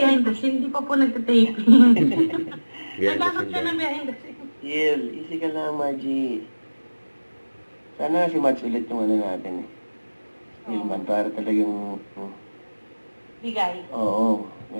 the scene, hindi pa po nagtataping. Yan, Nagkakot siya yan. ng behind the scene. Chill, easy ka lang, Margie. Sana si Mads ulit yung ano natin eh. Stillman, para talagang, Bigay. oo,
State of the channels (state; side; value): inverted; both; correlation -1.00